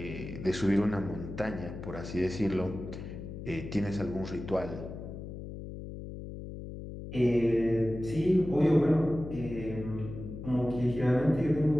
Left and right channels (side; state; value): left; noise; hum, 10 dB below the sound